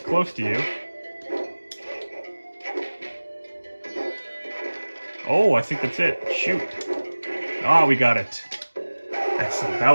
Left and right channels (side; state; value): both; inverted; correlation -1.00